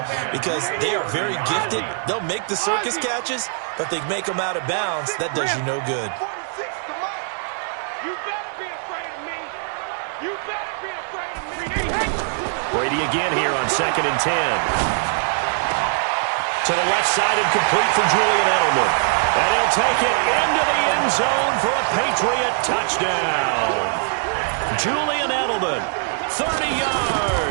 because they are very gifted. They'll make the circus catches, but they make them out of bounds. That does you no good. 46 to Mike. You better be afraid of me. Brady again here on 2nd and 10. To the left side and complete for Julian Edelman. And he'll take it into the end zone for a Patriot touchdown. Julian Edelman, 30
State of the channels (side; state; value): left; silent; 64 dB below the other